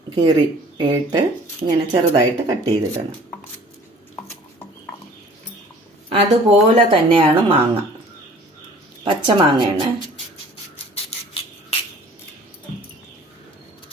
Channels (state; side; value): normal; both; correlation 0.50